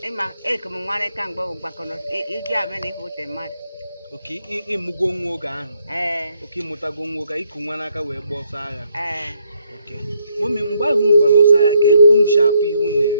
ịma ekem nwere ka mgbe bụ gbakọrọ iji abịa na ife mmadụ. Oke ịmụgo nwa oge ahụ. Oke ịmụtago nwa oge iku nwa n'aka wee gba ọsọ agha. Oke mọmi mgbe ahụ unu gbara ọsọ agha ka ekunu si afụ ihe unu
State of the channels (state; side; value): inverted; both; correlation -0.72